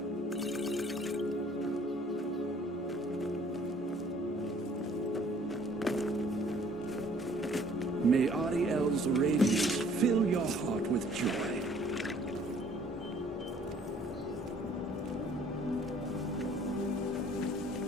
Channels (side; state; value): both; normal; correlation 0.57